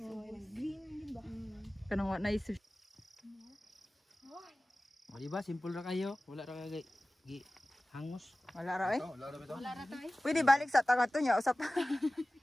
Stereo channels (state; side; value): normal; both; correlation 0.97